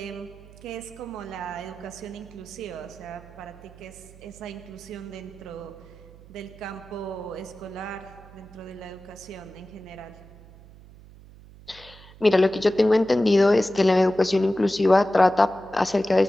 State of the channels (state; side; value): noise; right; hum, 21 dB below the sound